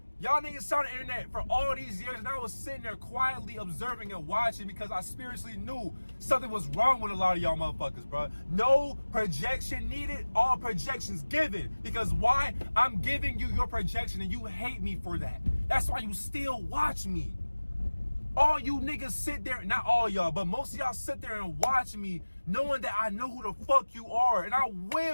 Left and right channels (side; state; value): both; inverted; correlation -1.00